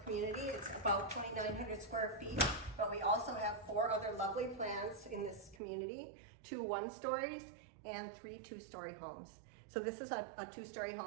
community. It's about 2,900 square feet, but we also have 4 other lovely plans in this community, 2 one-stories and 3 two-story homes. So this is a 2-story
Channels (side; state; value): left; drops out; at 5.6 s